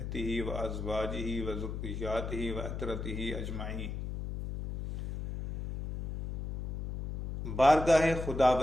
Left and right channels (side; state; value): left; noise; hum, 5 dB below the sound